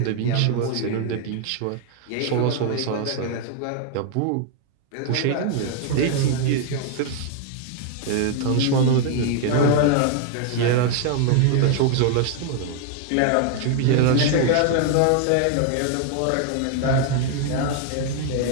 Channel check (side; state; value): both; different; correlation 0.00